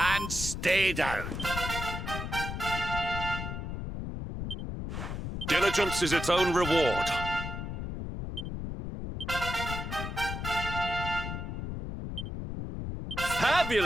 Stay down. Diligence is its own reward.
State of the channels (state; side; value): noise; left; rumble, 5 dB below the sound